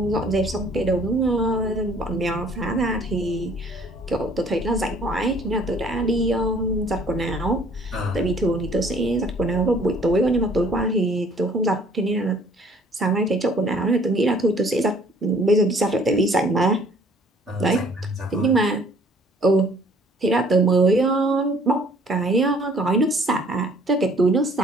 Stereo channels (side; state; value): both; normal; correlation 0.57